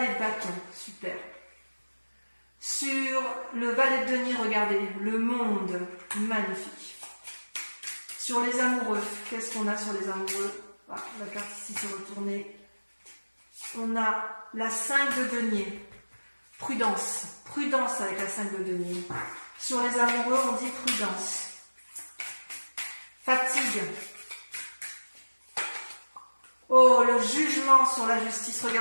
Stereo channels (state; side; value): inverted; both; correlation -1.00